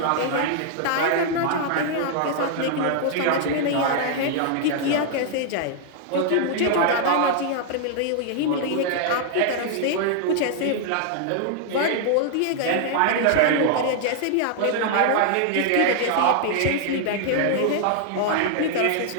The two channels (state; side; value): different; both; correlation -0.01